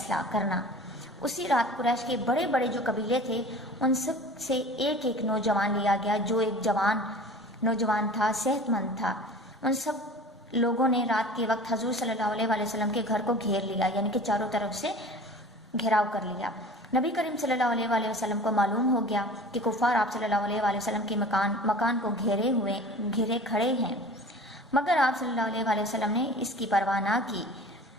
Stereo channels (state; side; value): normal; both; correlation 0.41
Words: کرنا۔ اسی رات قریش کے بڑے بڑے جو قبیلے تھے ان سب سے ایک ایک نوجوان لیا گیا، جو ایک جوان نوجوان تھا، صحت مند تھا۔ ان سب لوگوں نے رات کے وقت حضور صلی اللہ علیہ وآلہ وسلم کے گھر کو گھیر لیا، یعنی کہ چاروں طرف سے گھیراؤ کر لیا۔ نبی کریم صلی اللہ علیہ وآلہ وسلم کو معلوم ہو گیا کہ کفار آپ صلی اللہ علیہ وآلہ وسلم کے مکان کو گھیرے کھڑے ہیں، مگر آپ صلی اللہ علیہ وآلہ وسلم نے اس کی پرواہ نہ کی،